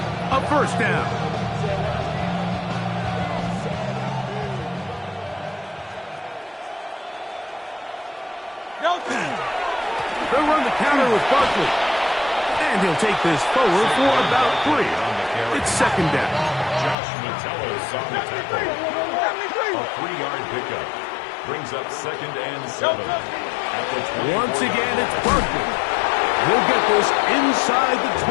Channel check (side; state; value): right; drops out; at 16.9 s